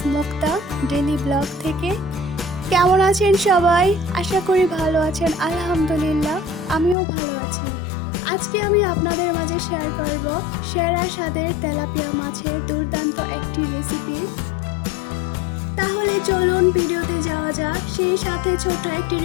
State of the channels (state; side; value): drops out; right; at 7.0 s